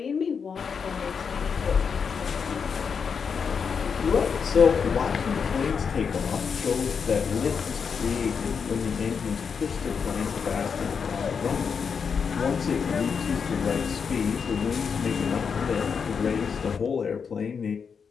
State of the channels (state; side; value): quieter; right; 6.2 dB